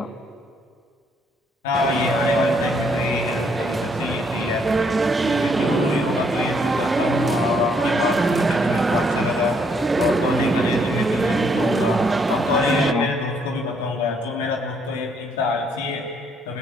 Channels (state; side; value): normal; both; correlation 0.70